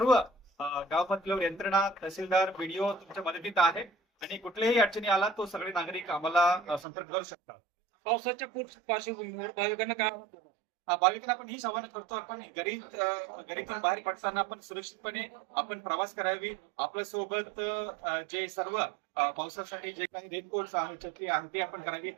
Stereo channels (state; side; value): drops out; left; at 6.9 s